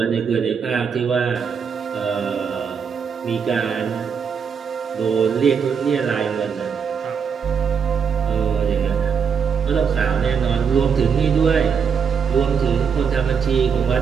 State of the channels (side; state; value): left; quieter; 6.5 dB